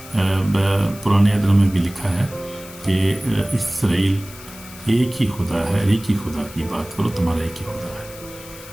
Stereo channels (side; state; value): left; noise; hiss, 17 dB below the sound